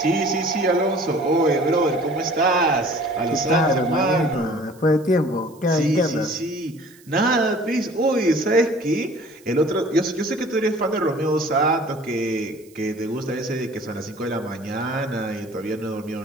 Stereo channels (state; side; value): noise; right; hiss, 27 dB below the sound